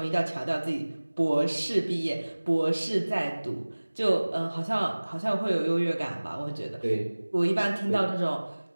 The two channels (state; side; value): inverted; both; correlation -1.00